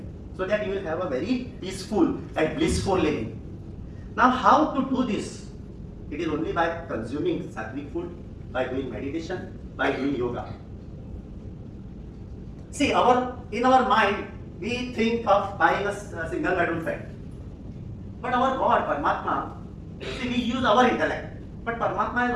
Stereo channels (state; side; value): identical; both; correlation 1.00